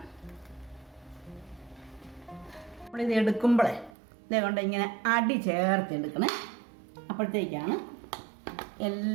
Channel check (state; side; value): drops out; left; at 3.9 s